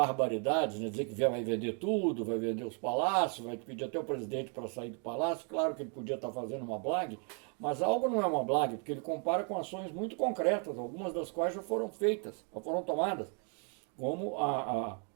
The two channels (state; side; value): quieter; left; 39.3 dB